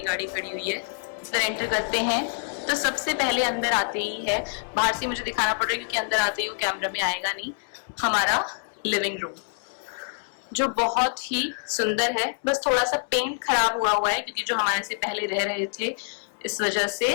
गाड़ी खड़ी हुई है। इधर एंटर करते हैं तो सबसे पहले अंदर आते ही है, बाहर से मुझे दिखाना पड़ रहा है क्योंकि अंदर आते ही वो कैमरा में आएगा नहीं, हमारा लिविंग रूम जो बहुत ही सुंदर है। बस थोड़ा सा पेंट खराब हुआ है क्योंकि जो हमारे से पहले रह रहे थे इस वजह से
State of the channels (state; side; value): silent; right; 61 dB below the other